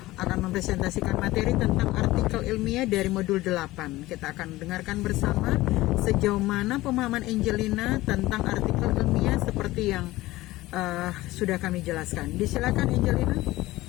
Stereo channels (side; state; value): right; quieter; 18.0 dB